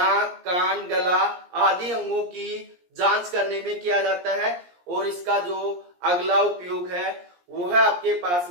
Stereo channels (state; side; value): late; left; 17 ms